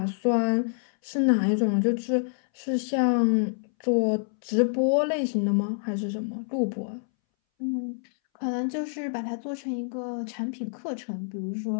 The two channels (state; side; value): silent; right; 60 dB below the other